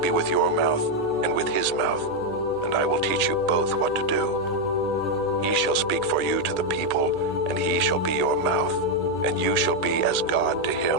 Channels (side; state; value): left; noise; hum, 21 dB below the sound